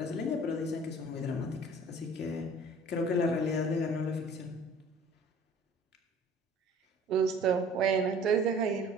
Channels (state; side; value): normal; both; correlation 0.49